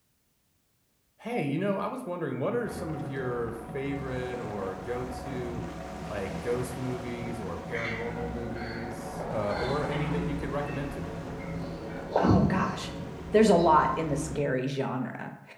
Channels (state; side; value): identical; both; correlation 1.00